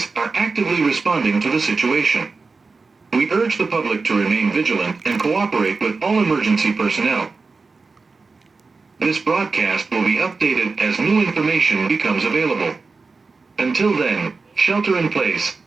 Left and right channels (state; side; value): quieter; left; 4.2 dB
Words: are actively responding to the situation. We urge the public to remain vigilant and cooperate with all emergency personnel. This broadcast will be updated as new information becomes available. Until then, shelter in place,